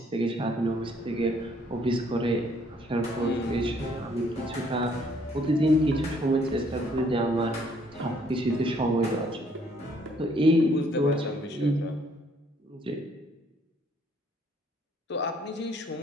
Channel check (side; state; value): both; normal; correlation 0.64